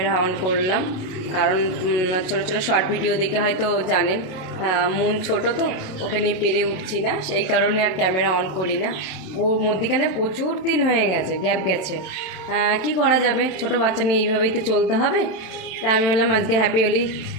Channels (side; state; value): right; late; 27 ms